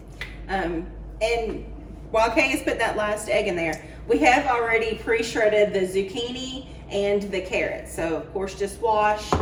And while Kay has put that last egg in there, we have already pre-shredded the zucchini and the carrots. So of course, just wash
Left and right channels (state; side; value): identical; both; correlation 1.00